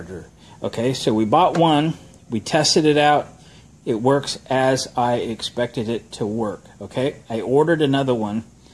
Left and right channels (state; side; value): identical; both; correlation 1.00